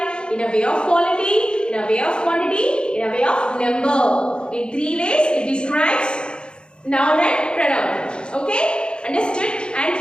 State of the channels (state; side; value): late; right; 0.052 ms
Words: In a way of quality, in a way of quantity, in a way of number. In three ways it describes noun and pronoun. Okay? Understood? And